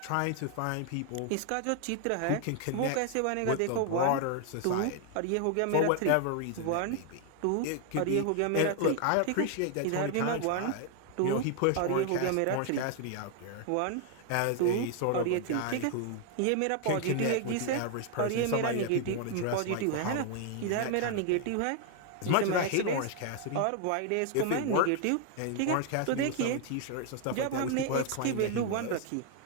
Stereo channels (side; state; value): both; different; correlation 0.00